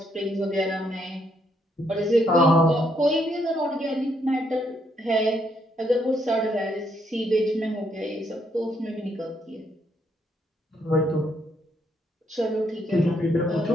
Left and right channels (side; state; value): both; normal; correlation 0.74